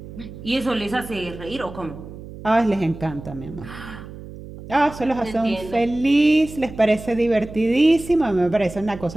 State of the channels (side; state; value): right; noise; hum, 14 dB below the sound